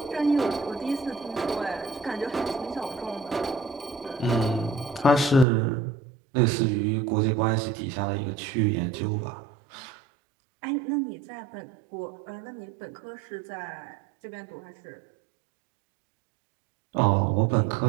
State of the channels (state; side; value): drops out; left; at 5.5 s